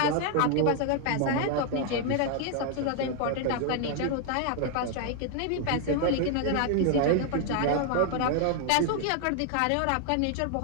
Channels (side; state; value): both; different; correlation 0.00